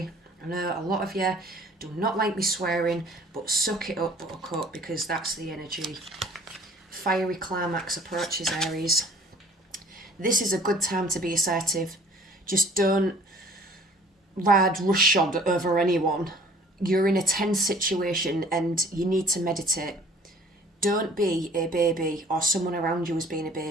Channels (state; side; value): normal; both; correlation 0.52